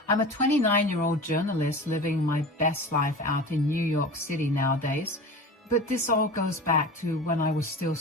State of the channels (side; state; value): both; normal; correlation 0.34